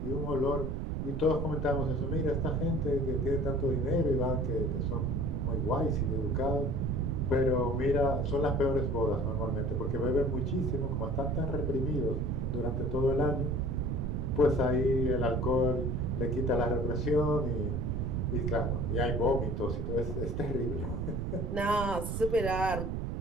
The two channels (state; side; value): noise; right; rumble, 2 dB below the sound